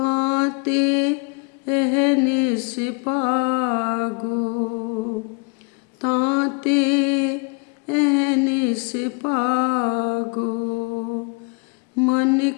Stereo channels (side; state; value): right; quieter; 32.5 dB